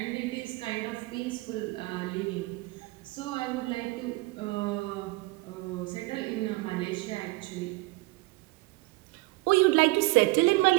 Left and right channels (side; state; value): left; quieter; 22.7 dB